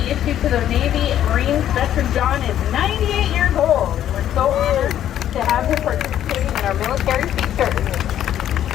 issued to the Navy Marines. Veteran John is 98 years old. We're so honored to have him participating in our military features.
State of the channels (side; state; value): right; quieter; 11.1 dB